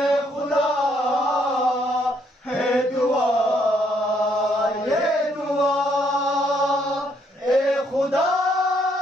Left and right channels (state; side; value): normal; both; correlation 0.71